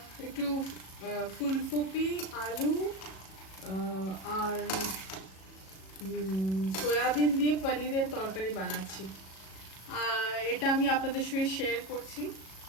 একটু ফুলকপি, আলু আর সয়াবিন দিয়ে পনিরের তরকারি বানাচ্ছি। এটা আমি আপনাদের সঙ্গে শেয়ার করছি।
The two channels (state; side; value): late; right; 37 ms